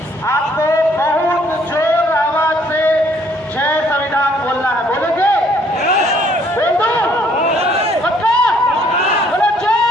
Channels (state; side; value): normal; both; correlation 0.64